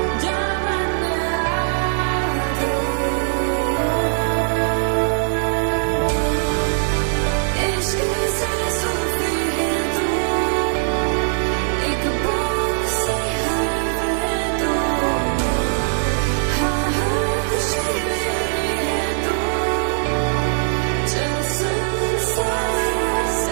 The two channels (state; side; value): silent; left; digital silence